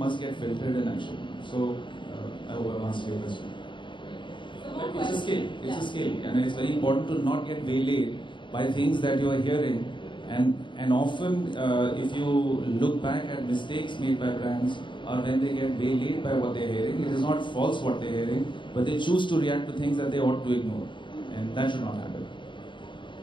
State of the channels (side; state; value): right; late; 0.23 ms